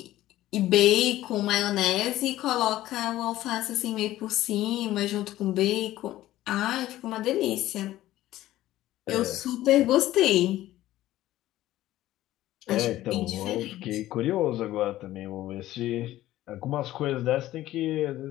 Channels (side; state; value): right; quieter; 14.9 dB